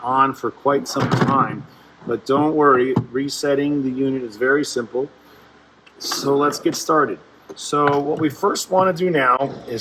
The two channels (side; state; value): both; identical; correlation 1.00